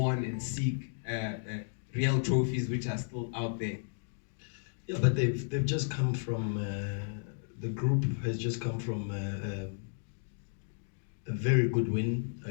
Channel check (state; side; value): silent; right; digital silence